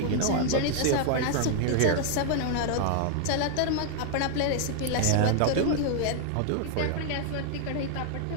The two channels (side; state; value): both; different; correlation 0.00